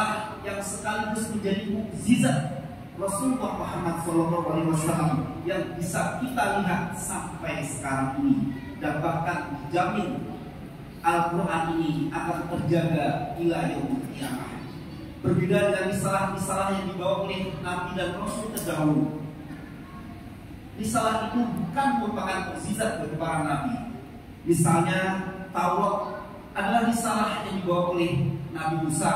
yang sekaligus menjadi mukjizat Rasulullah Muhammad sallallahu alaihi wasallam yang bisa kita lihat sampai sekarang ini, dan bahkan dijamin Al-Quran ini akan terjaga ila yaumil qiyamah. Berbeda dengan risalah-risalah yang dibawa oleh Nabi dan Rasul terdahulu. Risalah itu bukan merupakan mukjizat bagi para Nabi. Misalnya Taurat adalah risalah yang dibawa oleh Nabi Musa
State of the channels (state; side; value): identical; both; correlation 1.00